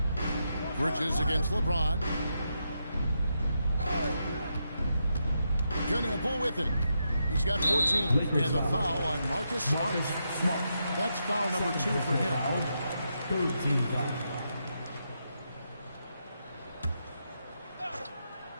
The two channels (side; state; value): both; inverted; correlation -0.83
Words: Bridges against LeBron. Kneppel with it. He's got 14. And the foul on Marcus Smart. That's foul number 2 for him. 13 foul.